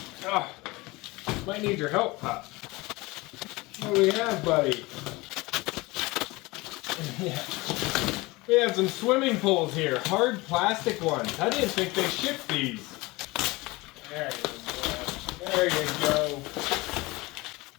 Oh, might need your help, Pup. What do we have, buddy? Yeah. We have some swimming pools here, hard plastic ones. I didn't think they shipped these. There you go. There you go.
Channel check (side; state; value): right; quieter; 22.5 dB